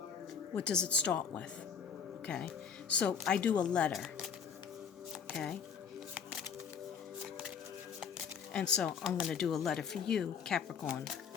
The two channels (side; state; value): right; quieter; 6.9 dB